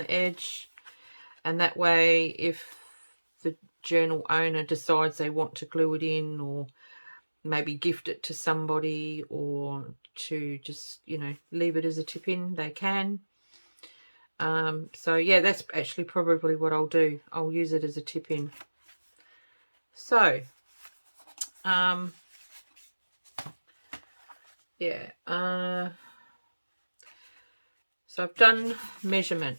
edge, and that way if the journal owner decides they want to glue it in, or maybe gift it to somebody, or to just, you know, leave it as a tip-in, they can. So yeah, that's actually probably what I'll do. I'll use it as a tip-in. So yeah, so I've done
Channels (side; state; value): both; inverted; correlation -1.00